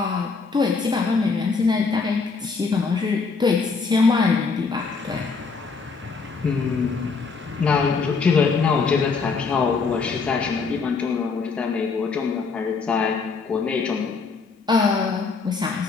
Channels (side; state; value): right; quieter; 4.8 dB